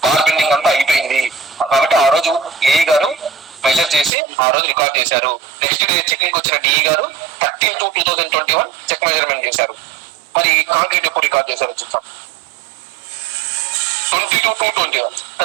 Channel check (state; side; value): drops out; left; at 4.1 s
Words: బార్ బెండింగ్ అంతా అయిపోయింది కాబట్టి ఆ రోజు ఏఈ గారు మెజర్ చేసి ఆ రోజు రికార్డ్ చేశారు. నెక్స్ట్ డే చెకింగ్ వచ్చిన డిఈ గారు 13/2/2021 చెక్ మెజర్మెంట్ చేశారు. మరి కాంక్రీట్ ఎప్పుడు రికార్డ్ చేశారు చూద్దాం. 22/2/21